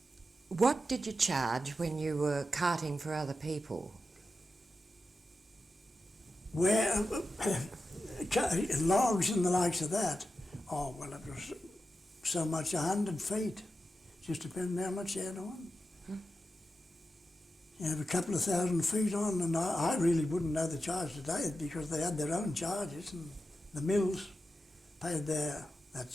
What did you charge when you were carting for other people? Where logs and the likes of that, oh, well, it was so much 100 feet. Just depending how much you had on. You have a couple of 1,000 feet on, and I really wouldn't know the charge today because they had their own charges, and the mills paid that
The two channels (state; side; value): normal; both; correlation 0.90